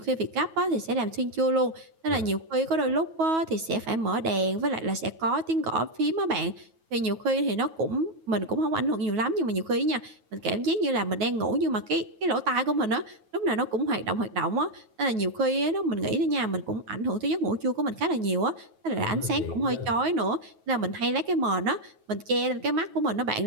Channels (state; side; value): late; left; 9.3 ms